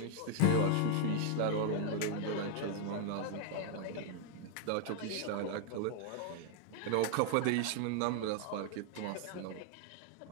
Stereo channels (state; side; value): different; both; correlation 0.00